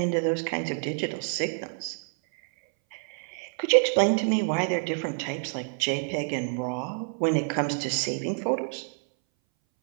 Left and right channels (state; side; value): silent; left; 60 dB below the other